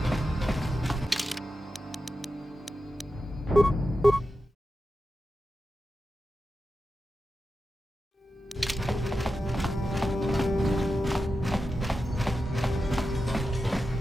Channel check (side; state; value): both; normal; correlation 0.90